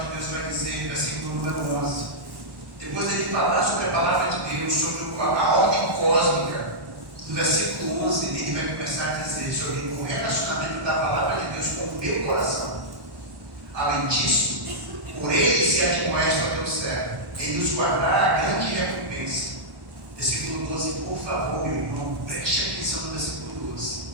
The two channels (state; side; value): late; left; 1.1 ms